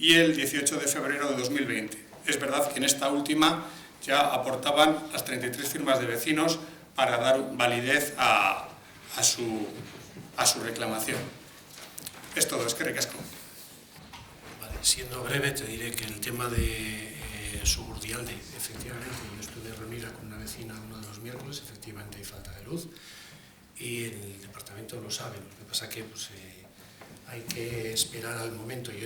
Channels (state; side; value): identical; both; correlation 1.00